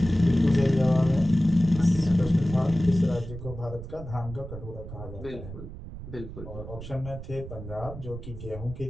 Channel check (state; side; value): noise; right; rumble, 11 dB below the sound